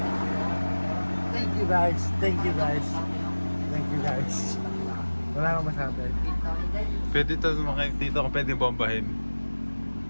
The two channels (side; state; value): both; inverted; correlation -1.00